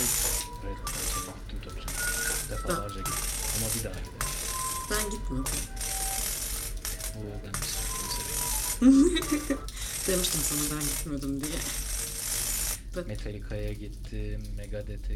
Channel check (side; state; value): both; identical; correlation 1.00